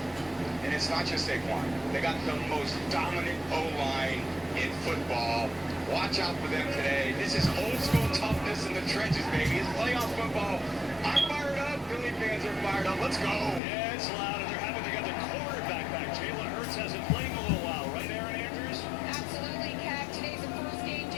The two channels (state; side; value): drops out; right; at 13.6 s